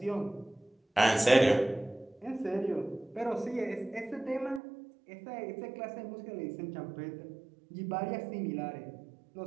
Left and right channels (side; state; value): left; drops out; at 4.6 s